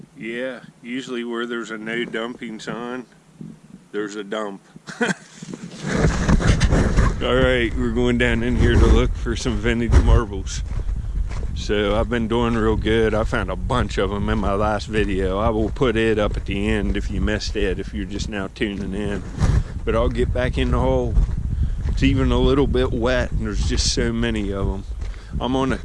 Yeah, usually where there's a no dumping sign, there's a dump. Alright, we're going down in here to look for some vintage marbles. So I've been doing real good. I found a bunch of them in my last video. I will put it up at the end if you missed it, if you're just now tuning in. But I'll get back in the hole. It's even a little bit wet and there's just so many of them. I'm on a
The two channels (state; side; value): identical; both; correlation 1.00